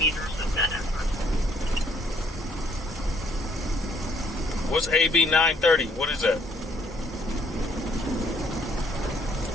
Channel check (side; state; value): both; normal; correlation 0.65